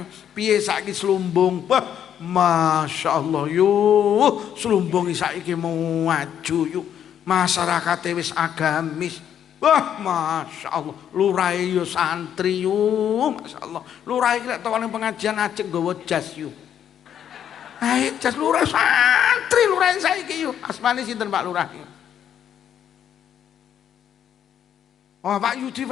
piye saiki slumbung? Wah, Masya Allah yuk slumbung saiki mau maju yuk, masyarakat wis agamis. Wah Masya Allah lurai yo santri yuk, Masya Allah lurai lek tokone pengajian ajeng nggawa jas yuk. Ayo jas lurai santri lurai saiki yuk. Asmane sinten Pak Lurah? Oh Pak Yudi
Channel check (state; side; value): quieter; right; 9.5 dB